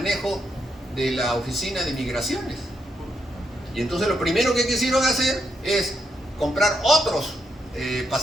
de la oficina de migraciones. Y entonces lo primero que quisieron hacer es comprar otros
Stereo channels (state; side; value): normal; both; correlation 0.79